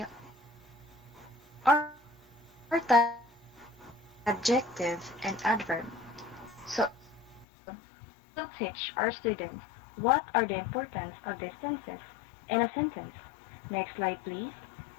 our topic is adjective and adverb. So in this episode, we will teach our students what are the importance of these tenses in a sentence. Next slide, please.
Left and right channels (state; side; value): drops out; right; at 7.5 s